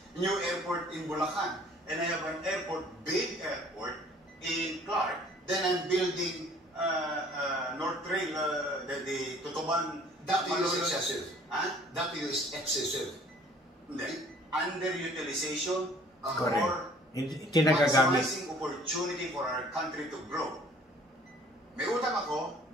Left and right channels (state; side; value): normal; both; correlation 0.55